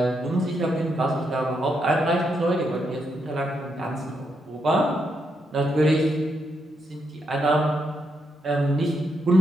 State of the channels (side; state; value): both; normal; correlation 0.80